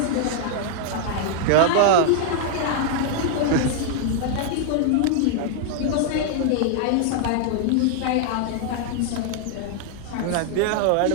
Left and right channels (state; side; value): different; both; correlation 0.00